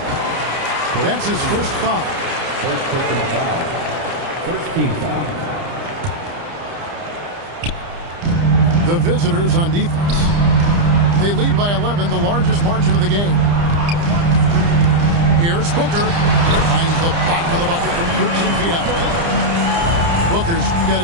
That's his first foul. First personal foul. First team foul. The visitors on defense. They lead by 11, the largest margin of the game. Here's Booker. Finds the bottom of the bucket from 13 feet out. Booker's got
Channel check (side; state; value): left; late; 30 ms